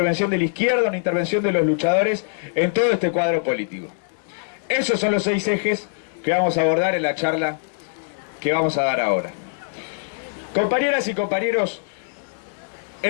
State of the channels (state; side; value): silent; right; digital silence